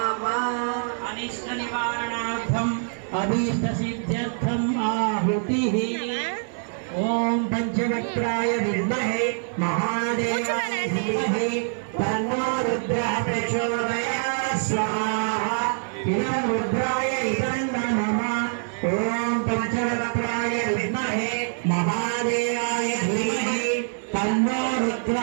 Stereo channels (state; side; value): silent; left; 62 dB below the other